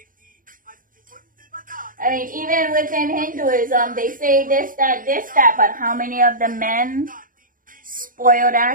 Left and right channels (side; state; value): left; late; 0.40 ms